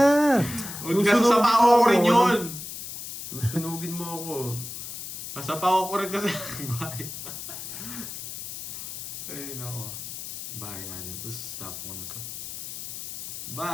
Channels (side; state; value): left; noise; hiss, 9 dB below the sound